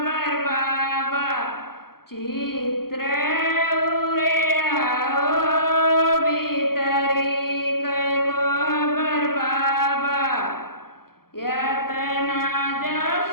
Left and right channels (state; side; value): late; right; 0.94 ms